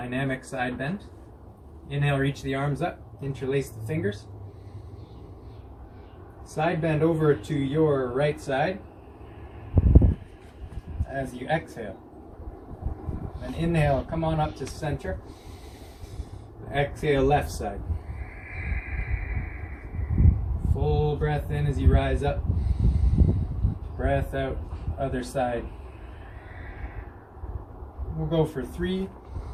side bend. Inhale, reach the arms up, interlace the fingers. Side bend over to your right side as you exhale. And inhale, come on up to center. Exhale, left side. Full breath in as you rise up. Breath out, other side. We'll go for 3.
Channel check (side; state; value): both; identical; correlation 1.00